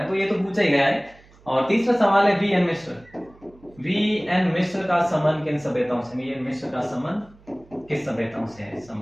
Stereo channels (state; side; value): noise; right; hum, 27 dB below the sound